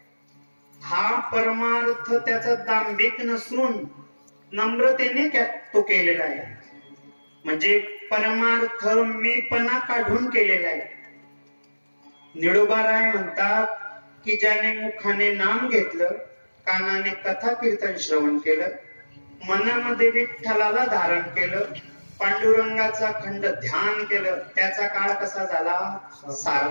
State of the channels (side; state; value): both; inverted; correlation -1.00